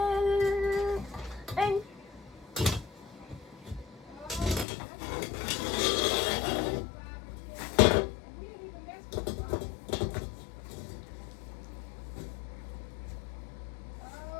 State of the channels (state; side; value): drops out; right; at 4.7 s